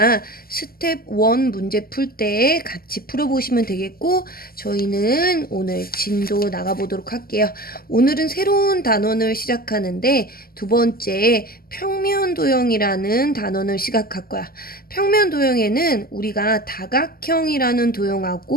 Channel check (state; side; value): late; right; 0.43 ms